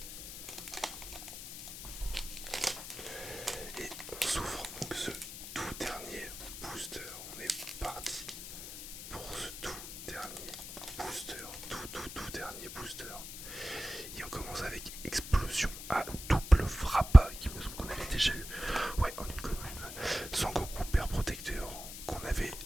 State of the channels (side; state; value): left; noise; hiss, 10 dB below the sound